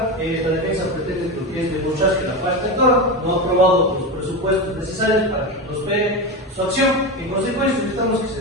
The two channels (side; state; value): both; normal; correlation 0.19